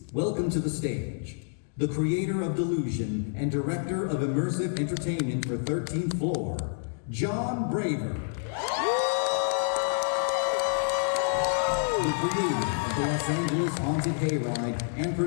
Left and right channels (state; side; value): silent; right; digital silence